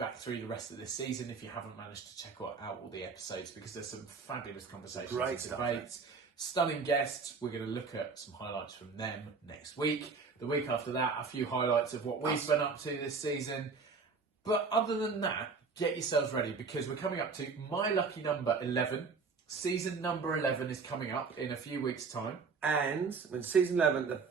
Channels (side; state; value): left; quieter; 4.9 dB